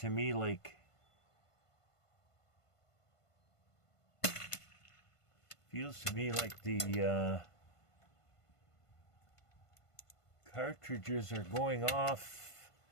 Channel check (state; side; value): late; right; 1.5 ms